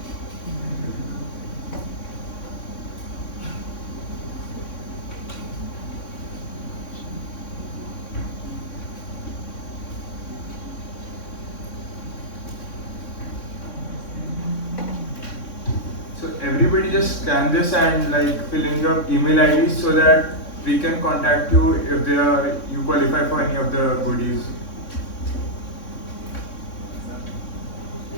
So everybody just scan this and like fill in your email ID so that we can contact you if you qualify for any of the goodies.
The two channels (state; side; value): late; right; 3.6 ms